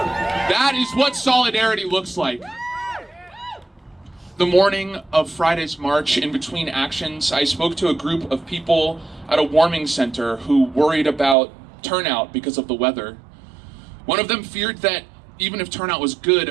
That is what solidarity looks like. The morning of Friday's march, in between actions, I spoke to a group of people at a warming center who worried about turnout because of the weather. One of them feared that even if turnout was good,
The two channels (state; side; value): drops out; left; at 11.4 s